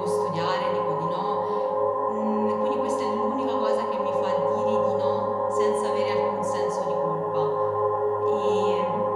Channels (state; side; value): identical; both; correlation 1.00